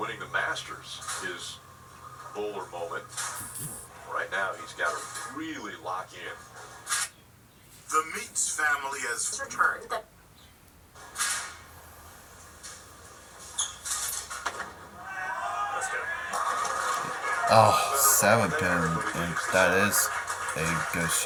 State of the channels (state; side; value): identical; both; correlation 1.00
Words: the Masters, his bowler moment. Right now, he's got to really lock in. The Meats family has returned. Oh, 7 pin. And that is a good